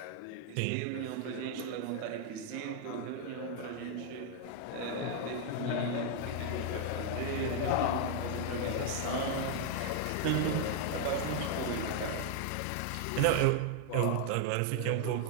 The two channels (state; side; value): different; both; correlation 0.00